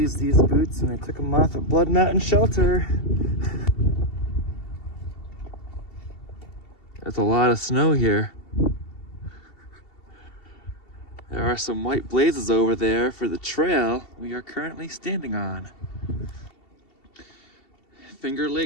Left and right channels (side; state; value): right; late; 2.7 ms